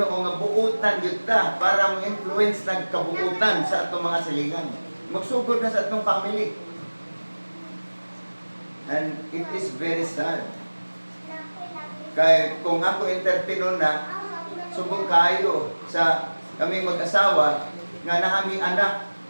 nga buutan gyud ta para mo influence ng kabuutan sa atong mga silingan. Magsugod na sa atong family. And it is very sad. Kaya kung ako entertainer na, subong kayo sa kaming mag-asawa nga naami anak.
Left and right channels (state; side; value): inverted; both; correlation -1.00